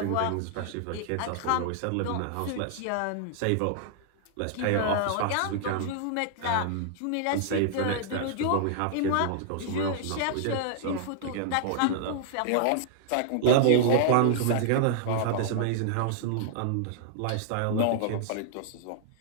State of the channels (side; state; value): both; different; correlation -0.01